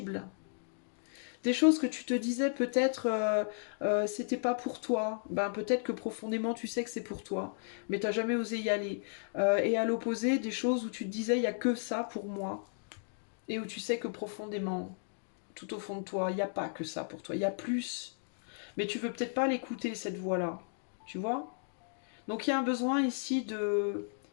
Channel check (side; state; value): right; silent; digital silence